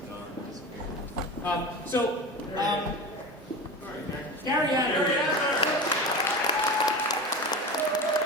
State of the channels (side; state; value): both; normal; correlation 0.28